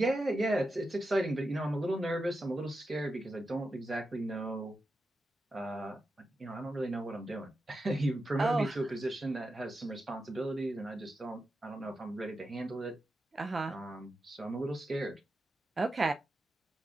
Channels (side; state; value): both; normal; correlation 0.89